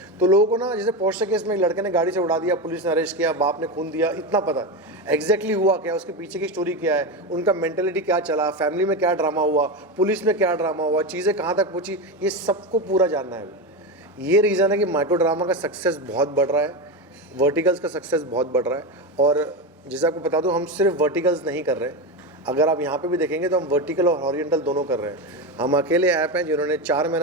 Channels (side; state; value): both; normal; correlation 0.17